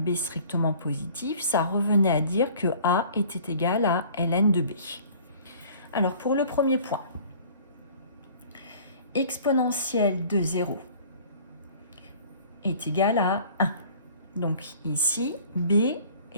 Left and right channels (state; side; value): inverted; both; correlation -0.50